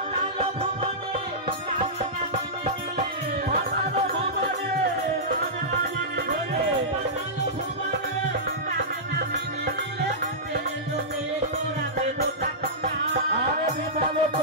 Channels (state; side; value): normal; both; correlation -0.15